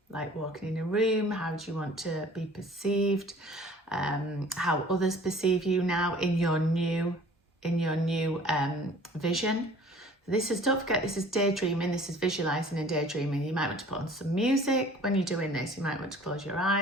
like walking in a room. How do you want to be perceived? How others perceive you now in your new vision. Don't forget, this is daydreaming. This is visualizing and daydreaming. You might want to put on some music when you're doing this. You might want to close your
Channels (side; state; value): both; normal; correlation 0.50